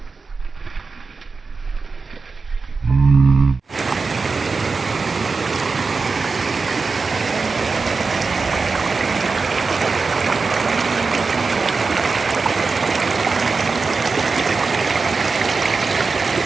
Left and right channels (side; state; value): left; quieter; 4.4 dB